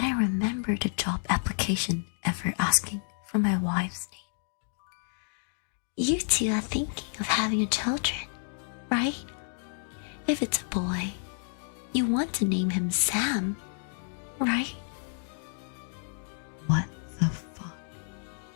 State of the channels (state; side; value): silent; right; 58 dB below the other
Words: didn't remember the job application ever asking for my wife's name. You two are thinking of having children, right? If it's a boy, you want to name him Sam, right? What the fuck?